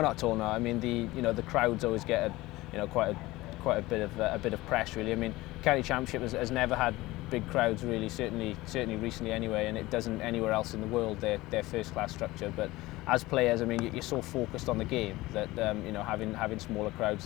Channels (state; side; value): quieter; right; 19.2 dB